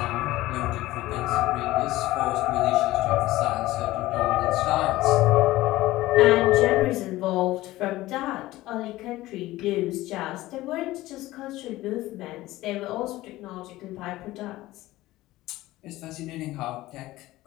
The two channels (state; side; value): quieter; right; 17.2 dB